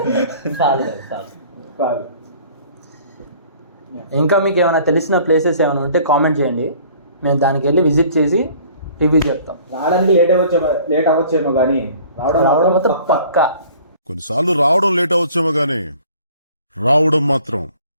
చాలు. ఇంకా మీకు ఏమైనా తెలిసిన ప్లేసెస్ ఏమైనా ఉంటే కామెంట్ చేయండి, మేము దానికి వెళ్ళి విజిట్ చేసి రివ్యూ చెప్తాం. రావడానికి లేట్ అవ్వచ్చేమో కానీ రావడం మాత్రం పక్కా. కొన్నిసార్లు రావడం లేట్ అవచ్చేమో కానీ రావడం మాత్రం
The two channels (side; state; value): both; inverted; correlation -0.52